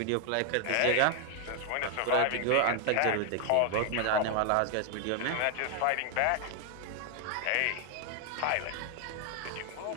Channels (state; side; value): different; both; correlation 0.00